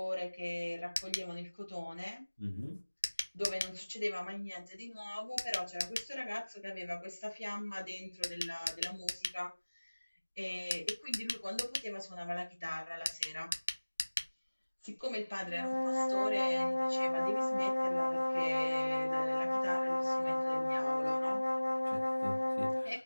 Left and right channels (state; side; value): inverted; both; correlation -1.00